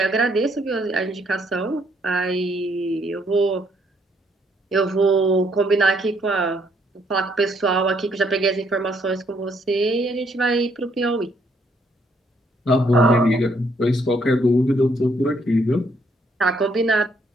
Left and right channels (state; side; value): normal; both; correlation 0.70